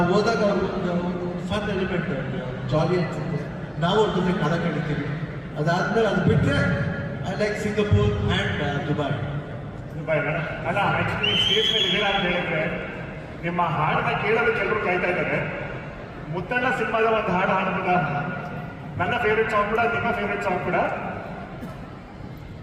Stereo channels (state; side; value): identical; both; correlation 1.00